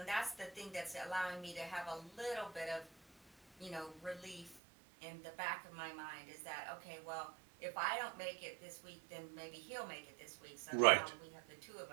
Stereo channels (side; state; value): left; drops out; at 4.5 s